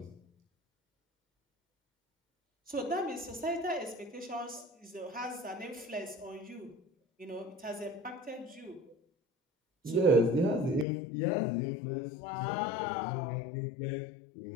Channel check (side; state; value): right; drops out; at 10.9 s